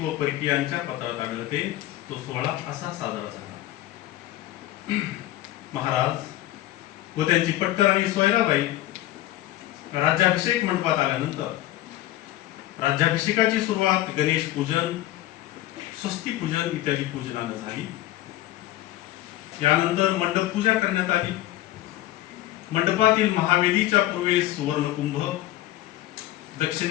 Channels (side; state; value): right; quieter; 15.2 dB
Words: व परकीयांच्या पत्रात आढळते. तो सोहळा असा साजरा झाला. महाराज व त्यांची पट्टराणी सोयराबाई राज्याभिषेक मंडपात आल्यानंतर राज्याभिषेकाची सुरुवात गणेश पूजन, स्वस्ती पूजन इत्यादी पूजनानं झाली. यानंतर मंडप पूजा करण्यात आली. मंडपातील महावेदीच्या पूर्वेस सुवर्णकुंभ,